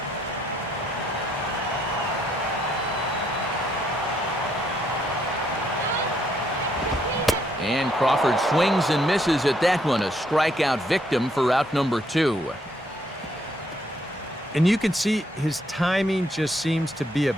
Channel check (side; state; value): both; normal; correlation 0.71